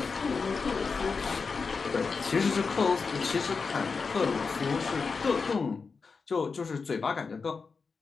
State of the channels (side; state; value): right; quieter; 4.9 dB